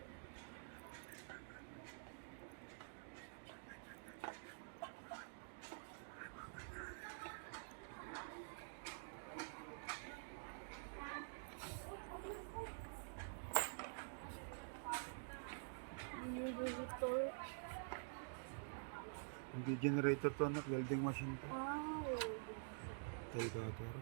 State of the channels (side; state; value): left; silent; digital silence